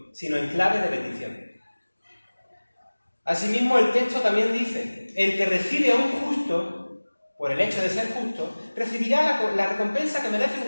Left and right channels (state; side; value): inverted; both; correlation -1.00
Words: sino en clave de bendición. Asimismo, el texto también dice: el que recibe a un justo, por el hecho de ser justo, recibirá la recompensa que merece